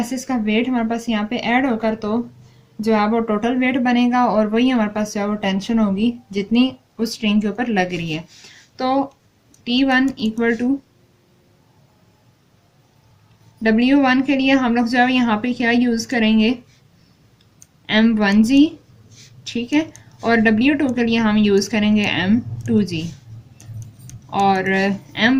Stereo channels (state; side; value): identical; both; correlation 1.00